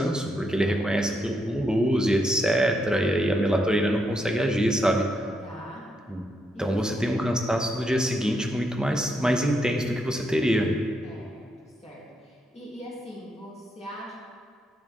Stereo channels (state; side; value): normal; both; correlation 0.79